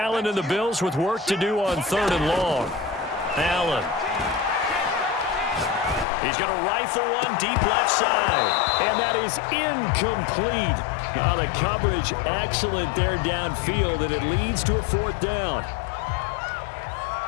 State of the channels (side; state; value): right; drops out; at 6.1 s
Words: and the Bills with work to do on 3rd and long. Allen. He's going to rifle one deep left side. And that is incomplete. The coverage excellent there downfield, and it leads to a 4th down.